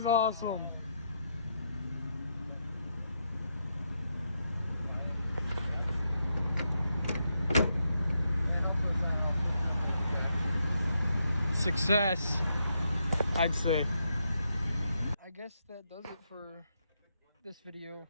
awesome. Success, I'd say. I guess that does it for this video.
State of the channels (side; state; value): both; inverted; correlation -0.80